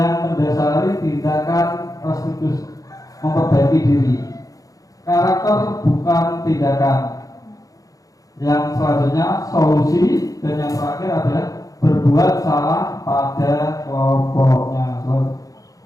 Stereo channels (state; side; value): late; right; 0.17 ms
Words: mendasari tindakan restitusi, memperbaiki diri. Karakter bukan tindakan. Yang selanjutnya solusi, dan yang terakhir adalah berbuat salah pada kelompoknya.